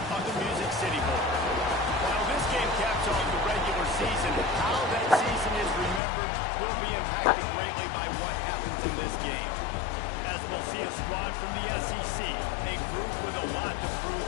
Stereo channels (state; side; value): drops out; right; at 6.0 s